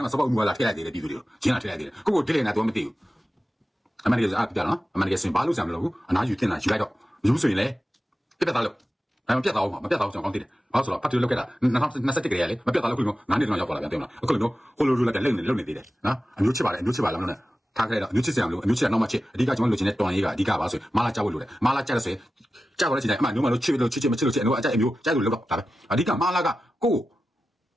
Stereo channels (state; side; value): normal; both; correlation 0.94